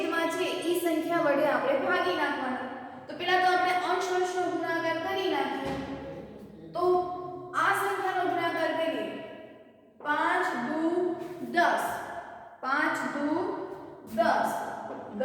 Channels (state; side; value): identical; both; correlation 1.00